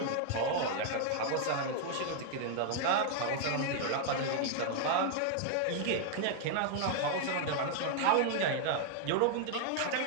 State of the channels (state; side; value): different; both; correlation 0.00